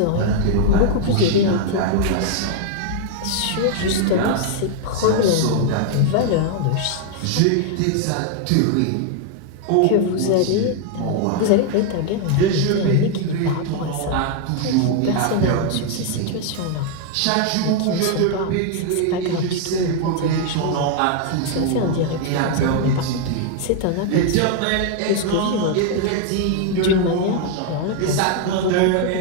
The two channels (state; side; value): different; both; correlation 0.00